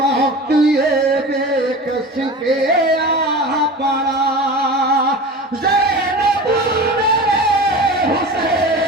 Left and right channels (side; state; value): both; normal; correlation 0.34